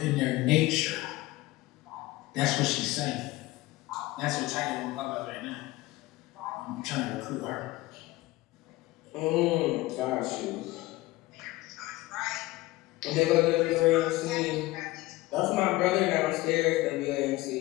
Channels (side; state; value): right; quieter; 18.8 dB